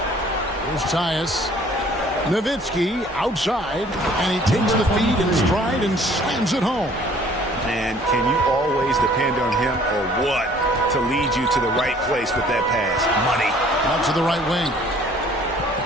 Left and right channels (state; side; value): normal; both; correlation 0.55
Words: Here's Tyus. Nowitzki outside, and he takes the feed in stride and slams it home. And can you always depend on him or what to lead you to the right place with that pass? Money. Out to the right wing.